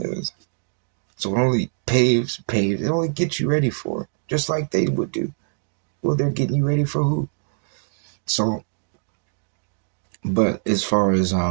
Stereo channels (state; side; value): silent; left; digital silence